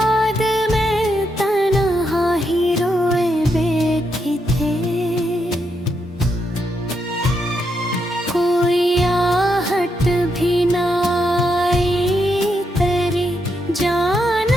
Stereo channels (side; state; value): both; normal; correlation 0.81